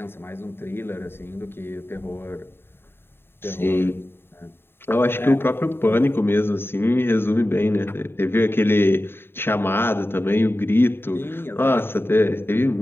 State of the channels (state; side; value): late; right; 0.11 ms